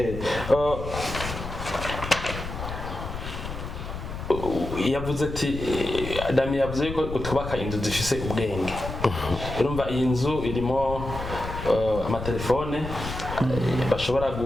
Yavuze ati Damien yavuze ko utubaka inzu zifise ubwenge. Urumva iyi nzu irimo amatelefone bashobora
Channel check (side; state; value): left; noise; rumble, 8 dB below the sound